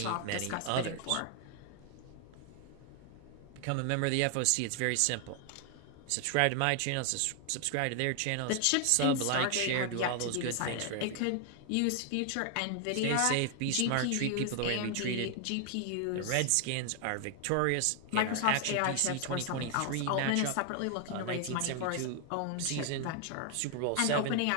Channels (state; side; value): different; both; correlation 0.00